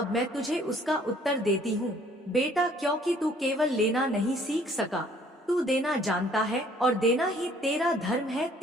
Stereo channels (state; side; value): normal; both; correlation 0.59